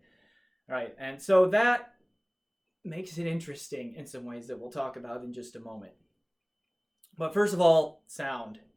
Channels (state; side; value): identical; both; correlation 1.00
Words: right, and so that makes it interesting in some ways that we'll talk about in just a moment. But first of all, sound.